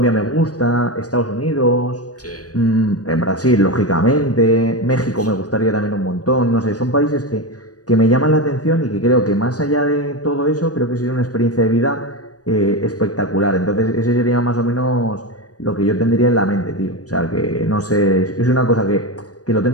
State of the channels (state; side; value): late; right; 0.68 ms